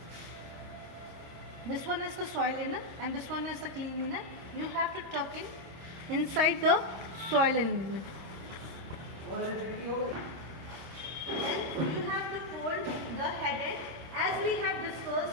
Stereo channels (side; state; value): left; late; 26 ms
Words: This one is the soiled linen and this one is the clean linen. You have to tuck inside the soiled linen. Then you have to fold the head end as we have